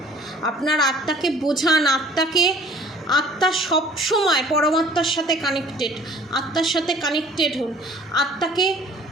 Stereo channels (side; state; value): both; normal; correlation 0.52